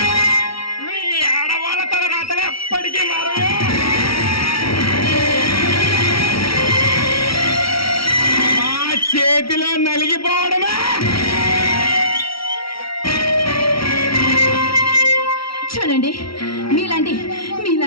మీ ఆడవాళ్ళ తల రాతలు ఎప్పటికీ మారదు. మా చేతిలో నలిగిపోవడమే. చూడండి,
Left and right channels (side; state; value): right; late; 0.75 ms